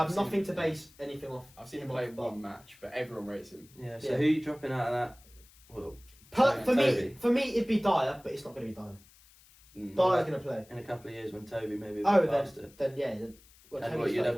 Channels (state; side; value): noise; left; hiss, 26 dB below the sound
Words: have nothing to base anything off. I've seen him play one match, but everyone rates him. Yeah, so who are you dropping out of that? Well, for me, it'd be Dyer, but it's not going to be Dyer. Dyer's going to play. In a couple of years when Toby maybe you'd